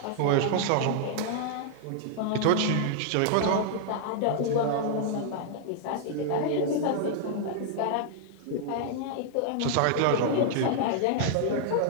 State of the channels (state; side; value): different; both; correlation -0.01